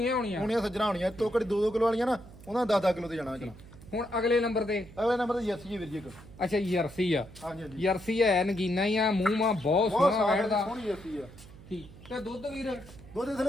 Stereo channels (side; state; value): right; noise; hum, 19 dB below the sound